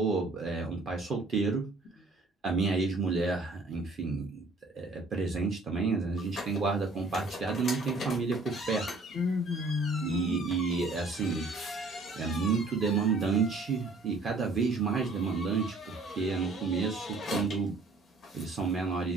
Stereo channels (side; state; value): left; quieter; 3.3 dB